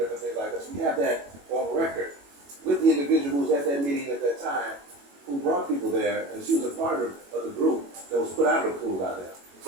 things like that. So we have that on record with the individual who was at that meeting at that time who brought people there, and she was a part of the group that was put out of the pool by them.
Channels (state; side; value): late; left; 21 ms